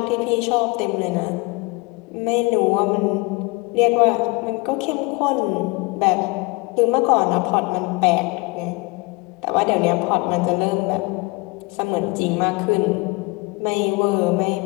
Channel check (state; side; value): quieter; right; 26.0 dB